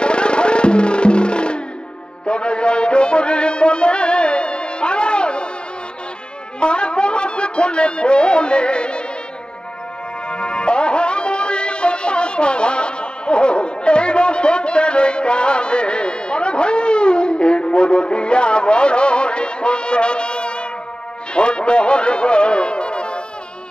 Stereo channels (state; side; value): late; right; 0.049 ms